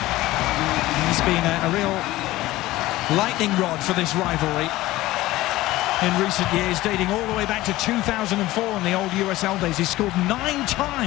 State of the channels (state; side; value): quieter; right; 17.4 dB